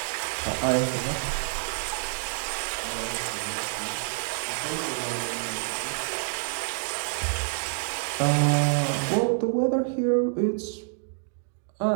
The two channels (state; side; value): silent; left; digital silence